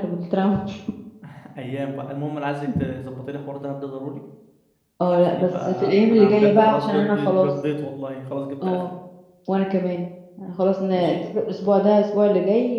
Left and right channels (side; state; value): both; identical; correlation 1.00